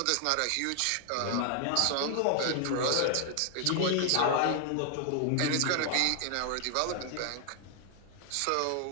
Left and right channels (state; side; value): different; both; correlation 0.00